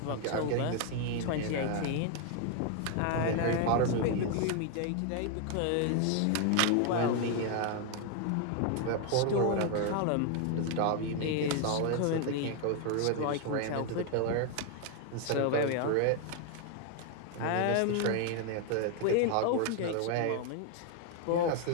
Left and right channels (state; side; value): different; both; correlation 0.01